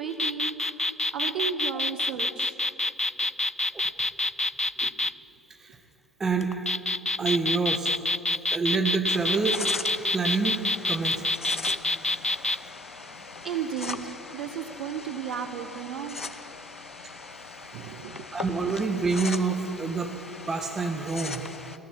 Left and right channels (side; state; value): both; normal; correlation 0.61